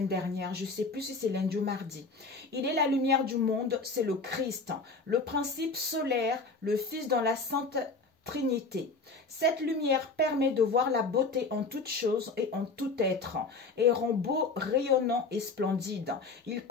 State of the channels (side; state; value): right; quieter; 3.8 dB